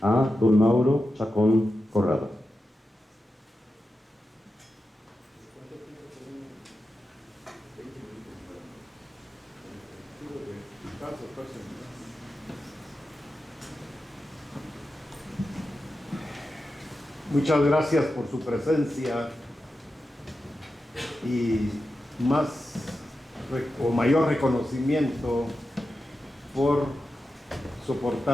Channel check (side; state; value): both; normal; correlation 0.91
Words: a don Mauro Chacón Corrado. Muchas gracias por su presencia y mayor reconocimiento por